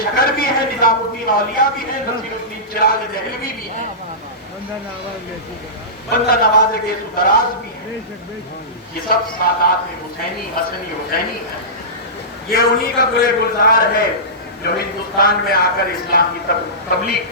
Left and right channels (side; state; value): both; normal; correlation -0.20